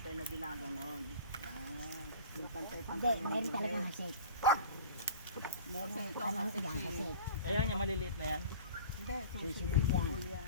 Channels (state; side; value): inverted; both; correlation -0.41